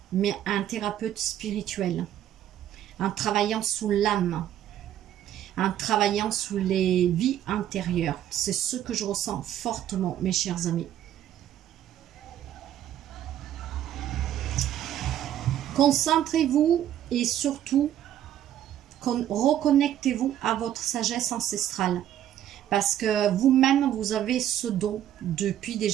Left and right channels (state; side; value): quieter; left; 11.4 dB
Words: mais un thérapeute spirituel. En travaillant sous l'âme, en travaillant sous les vies intérieures. C'est ce que je ressens fortement, mes chers amis. Concentrez-vous et surtout reconnectez-vous à votre sagesse ancestrale. Parce que vous-même, vous avez ce don depuis des